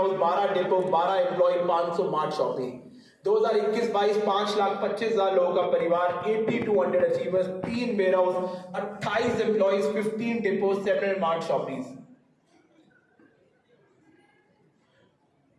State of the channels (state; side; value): identical; both; correlation 1.00